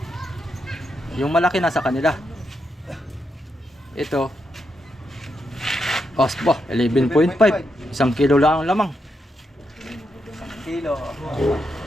Yung malaki nasa kanila. Ito. Osbo, 11.5. 1 kilo lang ang lamang. Kilo.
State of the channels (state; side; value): normal; both; correlation 0.83